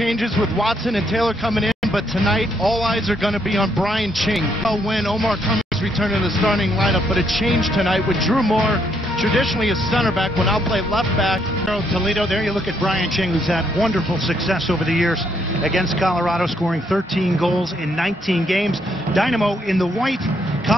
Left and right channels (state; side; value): normal; both; correlation 0.73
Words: with Watson and Taylor coming in, but tonight all eyes are going to be on Brian Ching. When Omar Cummings returned to the starting lineup, but it changed tonight with Drew Moore, traditionally a center back, will now play left back. Toledo, there you look at Brian Ching, who's had wonderful success over the years against Colorado, scoring 13 goals in 19 games. Dynamo in the white,